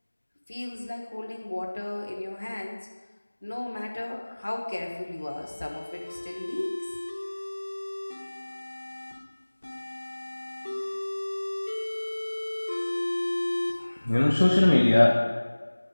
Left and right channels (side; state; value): both; inverted; correlation -1.00